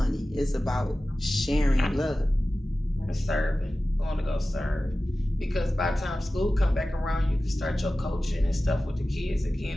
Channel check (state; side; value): normal; both; correlation 0.96